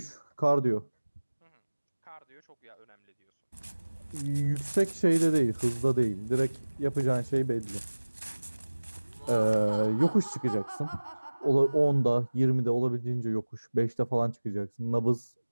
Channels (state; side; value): inverted; both; correlation -1.00